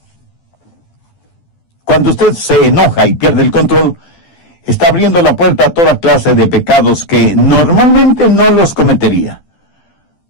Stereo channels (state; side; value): late; right; 12 ms